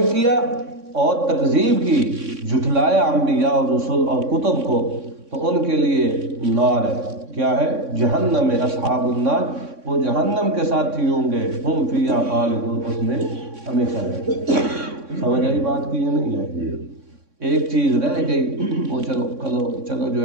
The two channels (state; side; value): late; left; 3.6 ms